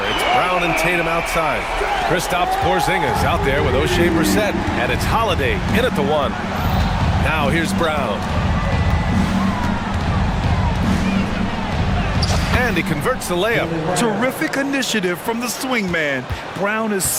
it's Brown and Tatum outside. Kristaps Porzingis out there with O'Shea Brissett, and it's Holiday in at the one. Now here's Brown. And he converts the layup. Terrific initiative from the swingman. Brown is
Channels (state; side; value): identical; both; correlation 1.00